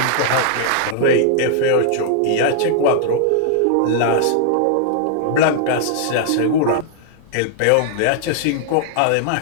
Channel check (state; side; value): different; both; correlation -0.01